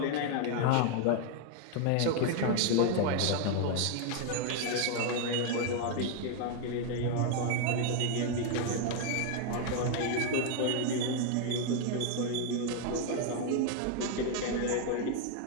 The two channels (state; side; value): different; both; correlation 0.00